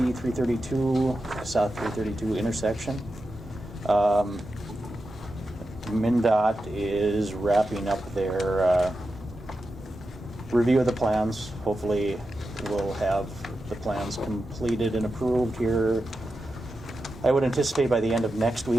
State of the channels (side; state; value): both; normal; correlation 0.90